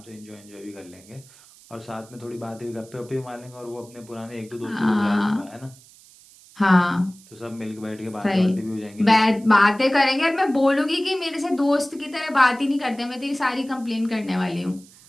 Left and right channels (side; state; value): right; noise; hiss, 24 dB below the sound